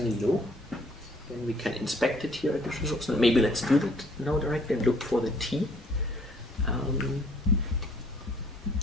low. Then we can inspect it here at this resource. Maybe let's do that now directly and look for the T.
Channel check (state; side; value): normal; both; correlation 0.60